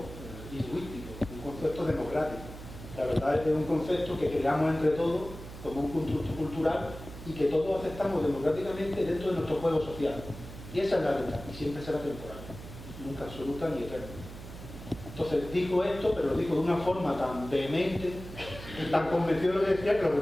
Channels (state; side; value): noise; right; hum, 13 dB below the sound